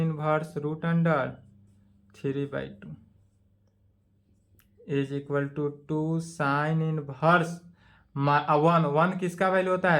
√3/2 is equal to 2 sine inverse 1 किसका वैल्यू होता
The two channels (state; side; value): identical; both; correlation 1.00